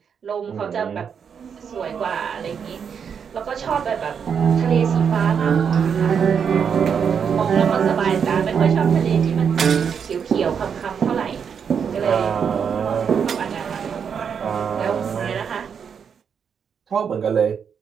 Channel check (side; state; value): left; quieter; 7.0 dB